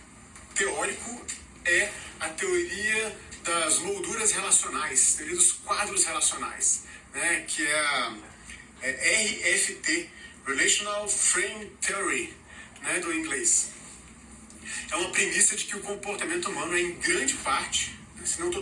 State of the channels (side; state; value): both; identical; correlation 1.00